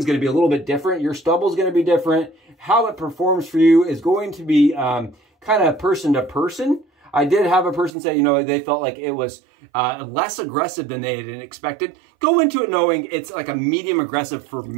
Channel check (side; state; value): left; drops out; at 7.9 s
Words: going to be a little bit different. Your stubble is going to be different. How it performs for you is going to be kind of person to person. I did have a person say, you know, they felt like it was less aggressive than they had expected. Go into it knowing it's like a medium aggressive for